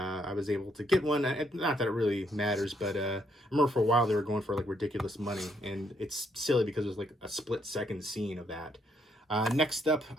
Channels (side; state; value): both; normal; correlation 0.72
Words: was able to get one. Not that it really matters, but I remember for a while they were going for like ridiculous money, and it's silly because there's like a split-second scene of that. Next up,